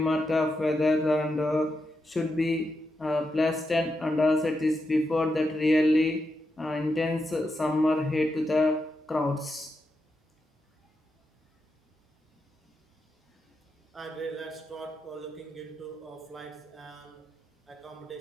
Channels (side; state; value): both; normal; correlation 0.85